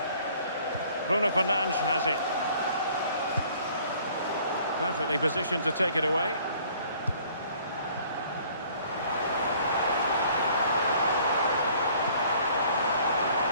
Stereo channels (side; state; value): both; inverted; correlation -0.56